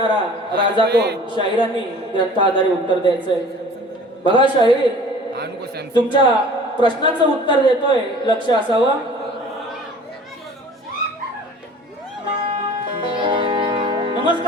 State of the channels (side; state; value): both; normal; correlation 0.46